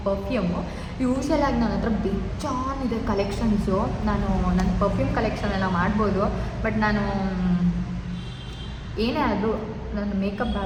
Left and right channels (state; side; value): identical; both; correlation 1.00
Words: ಪರ್ಫ್ಯೂಮು. ಯೂಶಲಾಗಿ ನನ್ನ ಹತ್ರ ಬೇಜಾನಿದೆ ಕಲೆಕ್ಷನ್ಸು. ನಾನು ನನ್ನ ಪರ್ಫ್ಯೂಮ್ ಕಲೆಕ್ಷನ್ ಎಲ್ಲ ಮಾಡ್ಬೋದು, ಬಟ್ ನಾನು ಏನೇ ಆದರೂ ನನ್ನ ಮೇಕಪ್